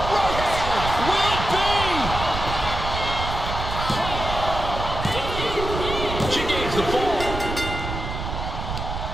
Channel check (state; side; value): noise; right; rumble, 5 dB below the sound